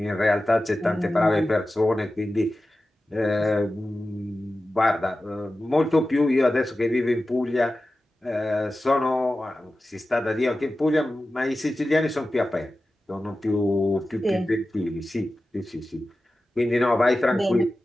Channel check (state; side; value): normal; both; correlation 0.94